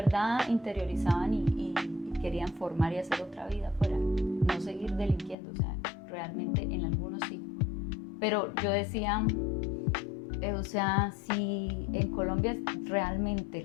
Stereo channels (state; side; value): drops out; right; at 5.4 s